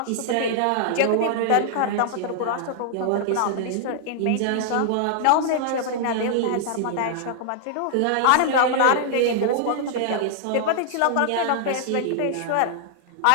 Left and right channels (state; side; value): different; both; correlation -0.01